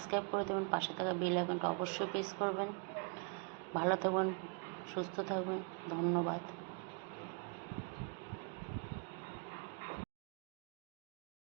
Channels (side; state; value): left; quieter; 37.0 dB